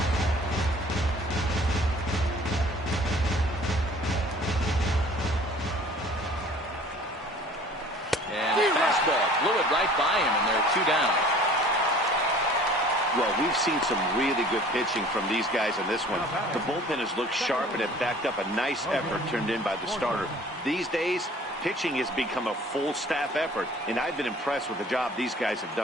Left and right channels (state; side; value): normal; both; correlation 0.49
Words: fastball blew it right by him, and they're 2 down. Well, we've seen some really good pitching from these guys in this one. The bullpen has looked sharp and have backed up a nice effort turned in by the starter. These days, pitching has become a full staff effort, and I've been impressed with the job these guys have